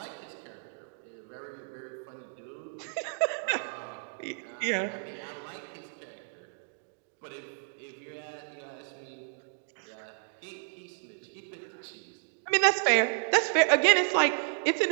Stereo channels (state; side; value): silent; left; digital silence